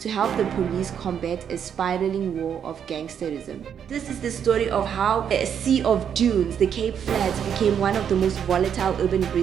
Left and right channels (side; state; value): left; quieter; 8.3 dB